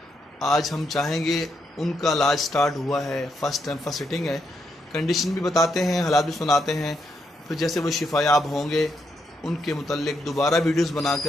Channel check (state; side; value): normal; both; correlation 0.79